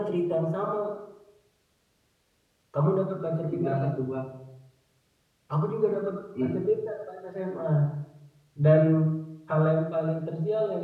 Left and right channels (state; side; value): identical; both; correlation 1.00